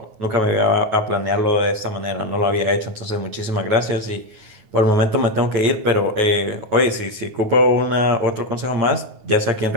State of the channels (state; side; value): late; left; 9.3 ms